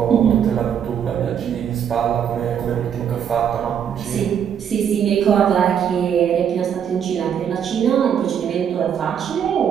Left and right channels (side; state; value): left; quieter; 8.5 dB